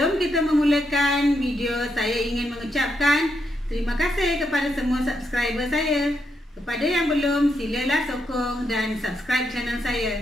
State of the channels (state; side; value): normal; both; correlation 0.80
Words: kita memulakan video, saya ingin mengucapkan terima kasih kepada semua subscriber saya. Kepada yang belum, silalah sokong dan subscribe channel